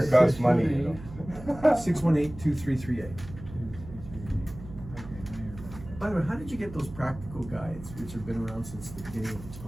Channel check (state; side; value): noise; right; hum, 14 dB below the sound